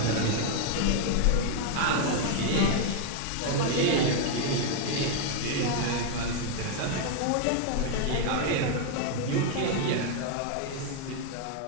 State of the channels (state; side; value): different; both; correlation 0.00